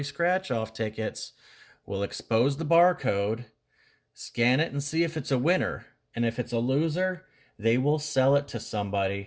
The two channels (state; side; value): identical; both; correlation 1.00